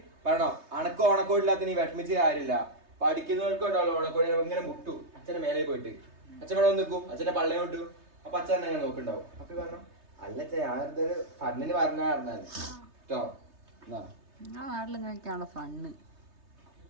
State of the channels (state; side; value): late; left; 3.3 ms